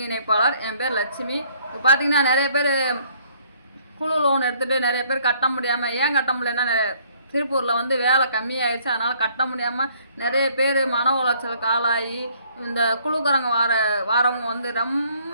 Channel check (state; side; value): inverted; both; correlation -0.62